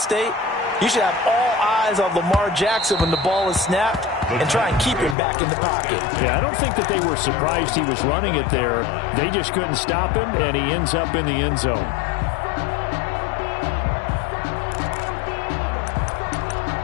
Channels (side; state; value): right; drops out; at 5.2 s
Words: you should have all eyes on Lamar Jackson when the ball is snapped and try and keep him back in the pocket. Yeah, I don't think that they were surprised he was running it there. They just couldn't stop him, and he ends up in the end zone.